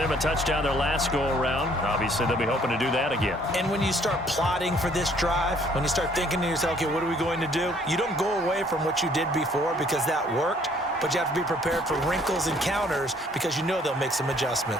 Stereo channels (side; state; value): both; normal; correlation 0.61